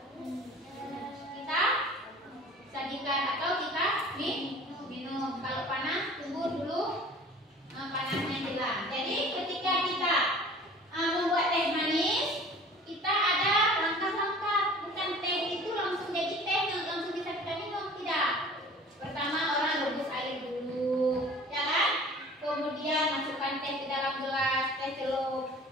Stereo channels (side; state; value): both; normal; correlation 0.46